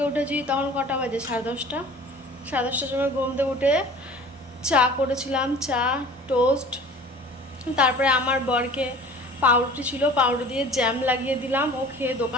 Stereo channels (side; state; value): both; normal; correlation 0.44